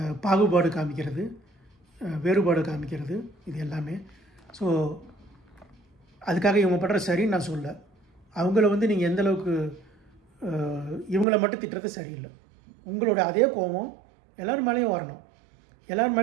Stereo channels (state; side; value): drops out; left; at 11.2 s